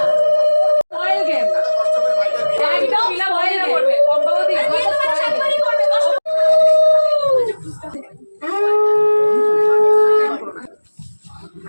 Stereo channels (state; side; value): inverted; both; correlation -1.00